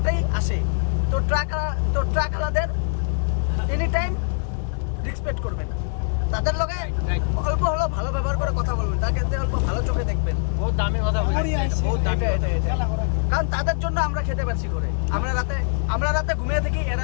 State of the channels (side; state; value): right; silent; 63 dB below the other